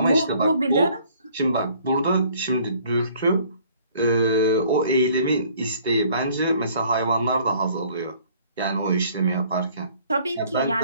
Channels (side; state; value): both; inverted; correlation -0.58